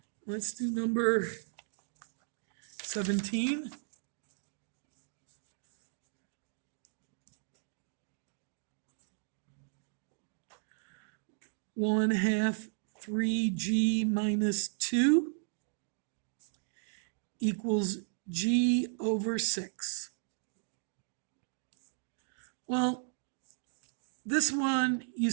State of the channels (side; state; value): left; silent; digital silence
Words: Let's do number 17. One half 3g minus 2 equals g over 6. Well, this one, you